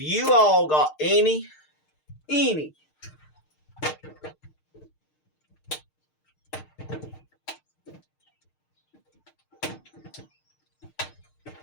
all got any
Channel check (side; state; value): right; late; 6.6 ms